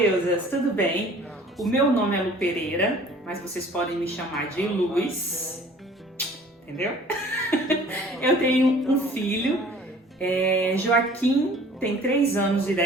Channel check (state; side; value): normal; both; correlation 0.50